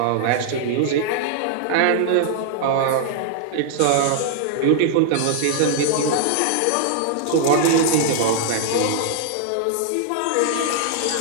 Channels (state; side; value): different; both; correlation -0.01